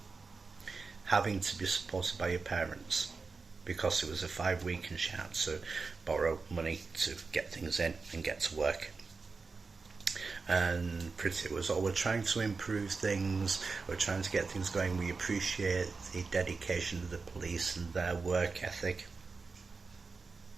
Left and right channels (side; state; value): left; quieter; 4.4 dB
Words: having to be supported by your parents because it was a 5-week and she had to borrow money to get things in and get to work. And Priti was, we're trying to improve things, we're trying to get things going, we appreciate the dedication of the police and their work ethic.